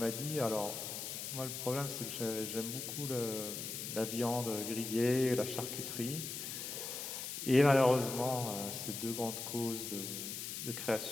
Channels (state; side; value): noise; left; hiss, 5 dB below the sound